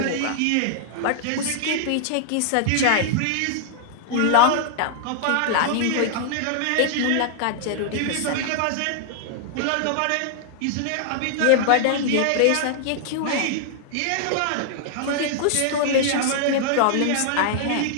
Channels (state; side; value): different; both; correlation -0.01